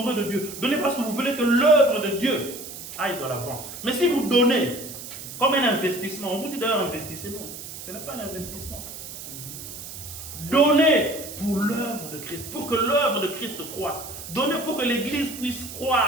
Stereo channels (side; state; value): right; noise; hiss, 11 dB below the sound